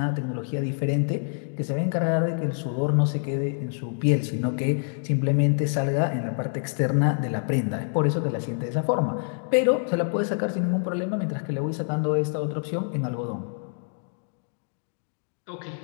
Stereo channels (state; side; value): silent; right; digital silence